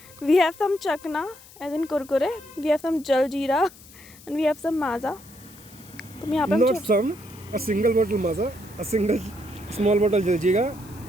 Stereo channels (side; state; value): left; noise; hiss, 22 dB below the sound